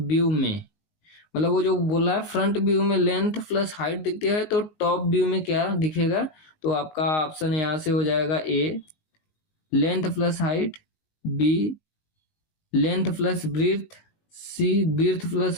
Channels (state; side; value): late; right; 19 ms